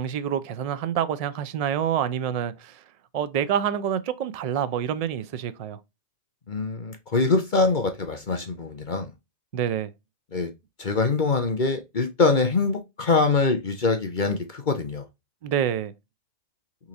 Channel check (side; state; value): right; late; 2.2 ms